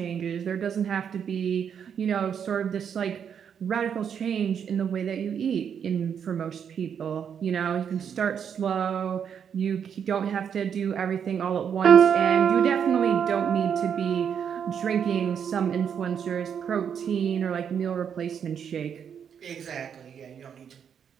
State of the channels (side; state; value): left; quieter; 7.8 dB